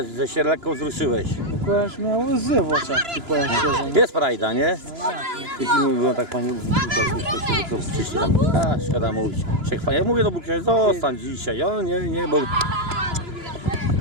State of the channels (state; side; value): late; left; 2.9 ms